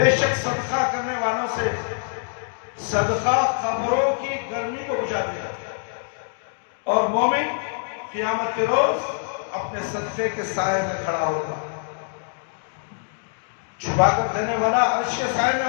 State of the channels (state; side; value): silent; right; digital silence